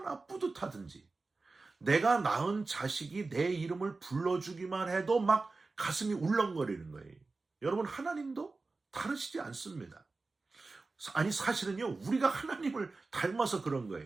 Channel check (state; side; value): quieter; left; 3.7 dB